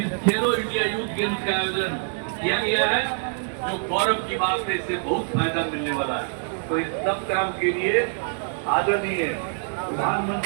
इस खेलो इंडिया यूथ गेम्स का आयोजन किया गया है, जो गौरव की बात है। इससे बहुत फायदा मिलने वाला है। तो इस सब काम के लिए आदरणीय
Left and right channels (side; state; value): left; silent; 58 dB below the other